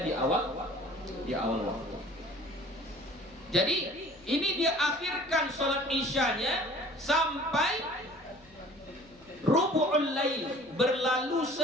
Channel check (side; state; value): left; noise; hum, 26 dB below the sound